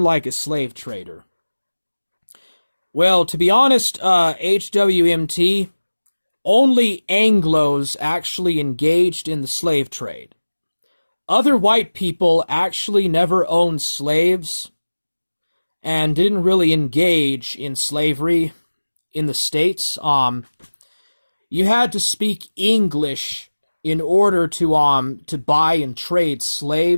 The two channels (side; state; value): both; inverted; correlation -1.00